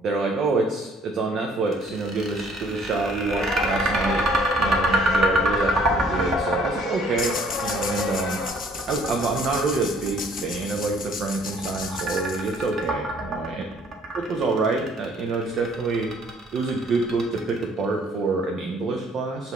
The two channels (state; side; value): normal; both; correlation 0.60